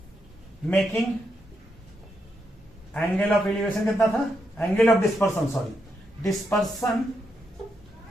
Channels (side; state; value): both; normal; correlation 0.82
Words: making angle of elevation कितना था, angle of dispersion, sorry dispersion